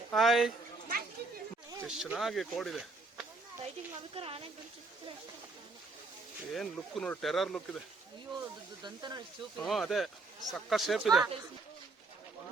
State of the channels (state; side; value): quieter; left; 3.5 dB